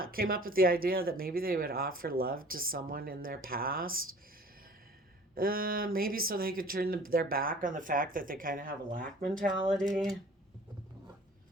came up with the idea that maybe they would offer love to someone in their past. Maybe so they could turn their back on the fact that they kind of have a lack mentality.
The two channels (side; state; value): both; normal; correlation 0.48